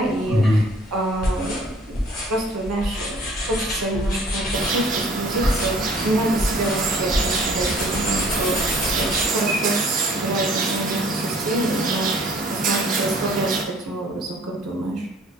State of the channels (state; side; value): normal; both; correlation 0.54